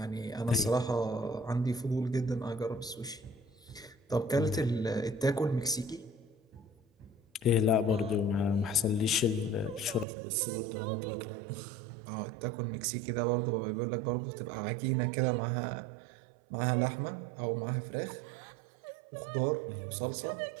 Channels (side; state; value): left; drops out; at 10.1 s